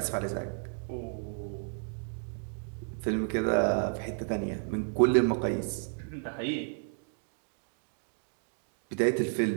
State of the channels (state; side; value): silent; left; 56 dB below the other